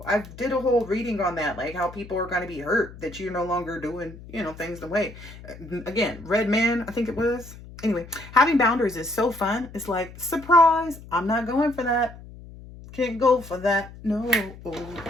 I did a whole reading on that, like how people are going to be hurt that you're no longer doing, you know, things the way. Again, Red Man, I think it was. Anyway, having boundaries is so fun. It's like, surprise, I'm not going for that. Can't go for that. No.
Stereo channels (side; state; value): left; noise; hum, 17 dB below the sound